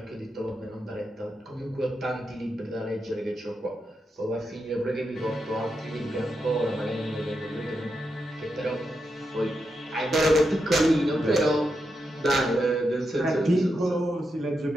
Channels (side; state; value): both; normal; correlation 0.85